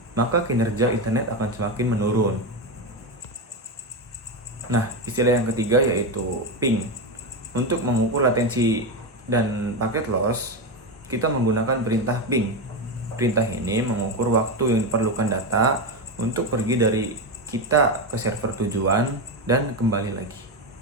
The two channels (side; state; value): both; normal; correlation 0.13